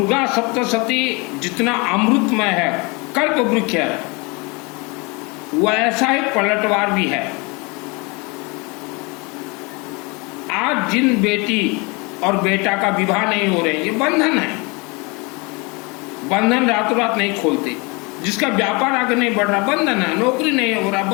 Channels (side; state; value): right; quieter; 28.4 dB